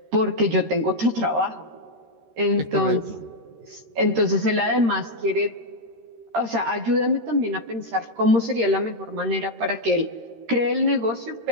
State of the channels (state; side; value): late; left; 13 ms